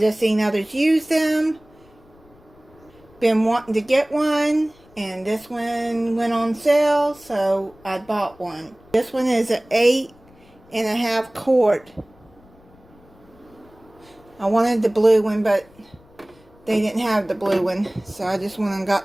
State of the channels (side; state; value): left; noise; rumble, 28 dB below the sound